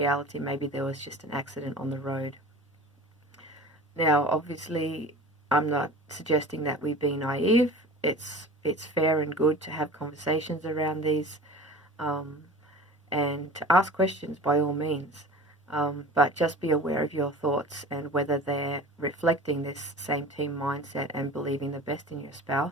maybe there was just an accident on the road. Now, obviously, I'm not suggesting that we be naive. It's fair and good to have conversations around these, and to ask questions by all means. But just be aware of your thoughts and whether they're reflecting this same team mindset and believing the best in your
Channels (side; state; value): both; normal; correlation 0.38